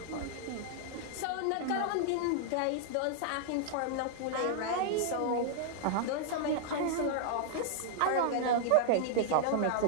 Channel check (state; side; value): different; both; correlation -0.01